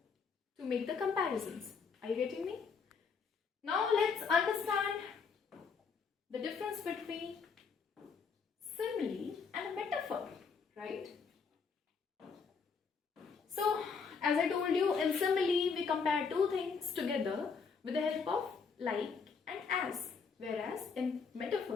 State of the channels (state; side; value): quieter; right; 5.5 dB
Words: to make the comparisons. Are you getting me? Now let's understand the difference between simile and metaphor, right? So as I told you, in simile we compare two things together with the help of like and as, whereas in